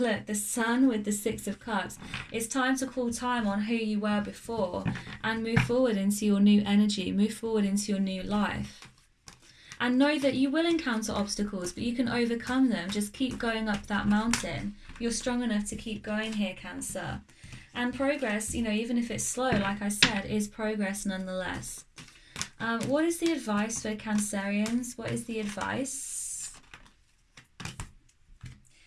the Sun with the Six of Cups. It's time to call time on who you were before and move forward into your new energy, move forward into your new life. And know that you will encounter obstacles, but you can overcome them. Just keep going up that mountain. You're strong enough to keep going here, Cancer. And progress, you know, even if it's slow, like I said, is progress nonetheless. What is the advice for Cancerians? What is the advice?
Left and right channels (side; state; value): both; identical; correlation 1.00